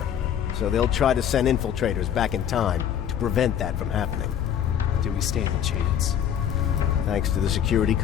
so they'll try to send infiltrators back in time to prevent that from happening. Do we stand a chance? Thanks to the security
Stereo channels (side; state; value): right; quieter; 9.3 dB